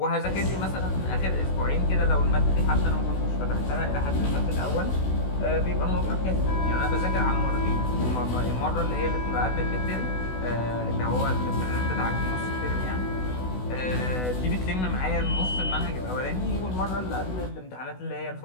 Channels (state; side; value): late; right; 16 ms